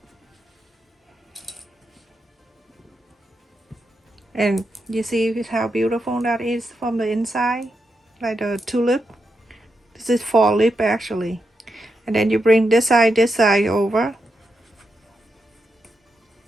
And you see how beautiful that is from the inside, like the tulip. This is fall lip actually. And then you bring this side over.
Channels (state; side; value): normal; both; correlation 0.85